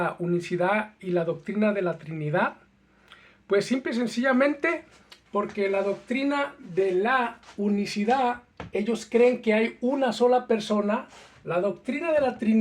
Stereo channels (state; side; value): identical; both; correlation 1.00